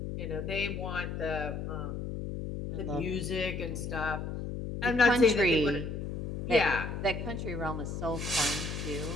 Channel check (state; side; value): noise; left; hum, 5 dB below the sound